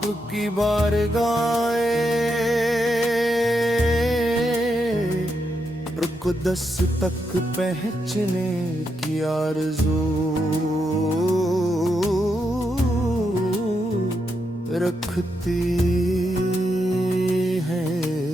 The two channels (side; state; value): both; normal; correlation 0.82